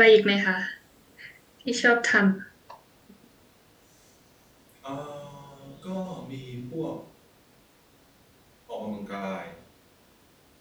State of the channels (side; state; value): both; identical; correlation 1.00